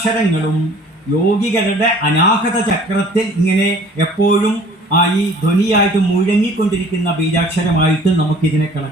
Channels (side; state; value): both; normal; correlation 0.51